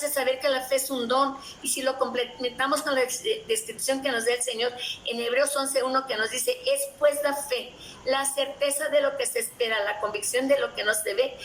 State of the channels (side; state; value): both; identical; correlation 1.00